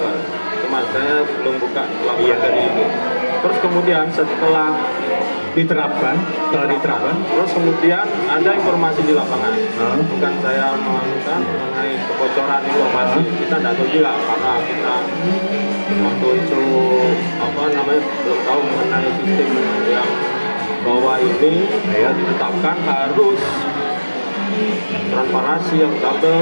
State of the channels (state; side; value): inverted; both; correlation -1.00